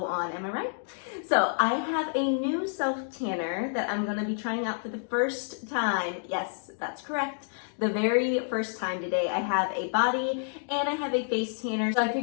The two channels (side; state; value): right; silent; digital silence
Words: on, am I right? So I have a new self-tanner that I'm going to be trying out for the first time. Yes, that's correct. The very first time today. I have a body and I have a face tanner. So I